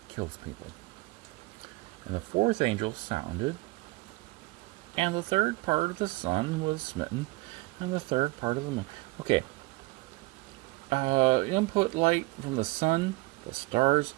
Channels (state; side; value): quieter; left; 22.4 dB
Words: kills people. And the fourth angel sounded, and the third part of the sun was smitten, and the third part of the moon. Okay. Input light from the sun, the stars,